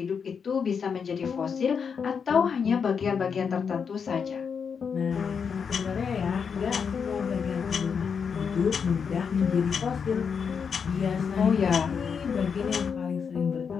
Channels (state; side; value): quieter; right; 6.4 dB